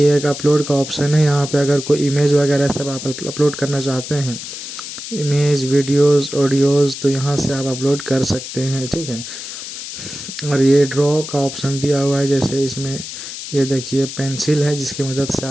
अपलोड का ऑप्शन है। यहाँ पे अगर कोई इमेज वगैरह सब आप अपलोड करना चाहते हैं, इमेज, वीडियोस, ऑडियोज़, तो यहाँ से आप अपलोड कर सकते हैं, ठीक है। और ये ड्रॉ का ऑप्शन दिया हुआ है, जैसे इसमें ये देखिए पेंसिल है जिसकी मदद से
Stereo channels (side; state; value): left; noise; hiss, 9 dB below the sound